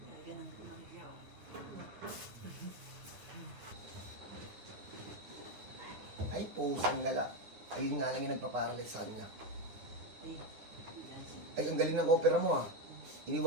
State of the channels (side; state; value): left; late; 9.8 ms